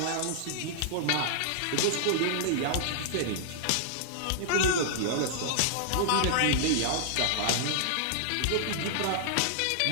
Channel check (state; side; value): different; both; correlation -0.01